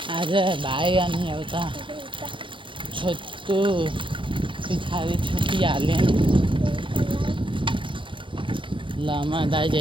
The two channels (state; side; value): late; left; 0.25 ms